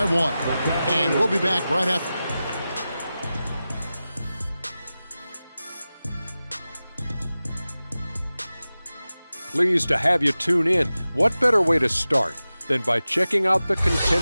1. And we'll be back right after. Pleased to have you tune in. What better way to start than by checking out the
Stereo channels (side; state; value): both; inverted; correlation -0.95